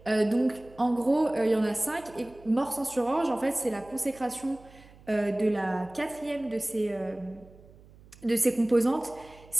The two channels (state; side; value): noise; right; hum, 24 dB below the sound